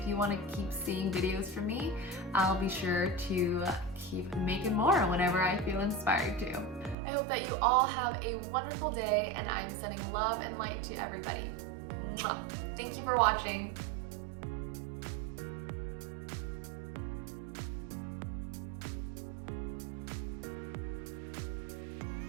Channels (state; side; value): drops out; left; at 7.0 s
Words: you want to keep seeing videos from me. I'll be sure to keep making more whenever I feel inspired to. I hope that you all have a wonderful day, and I'm sending love and light to everybody. Mwah. Thank you for watching.